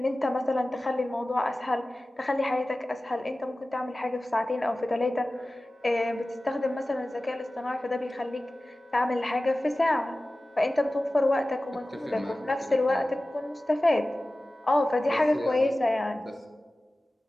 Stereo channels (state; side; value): normal; both; correlation 0.96